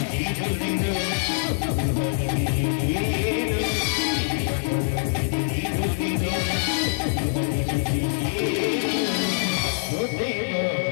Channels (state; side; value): silent; right; 62 dB below the other